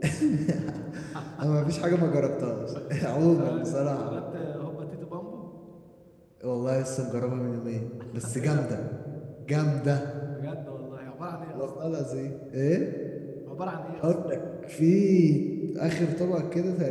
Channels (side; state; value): both; identical; correlation 1.00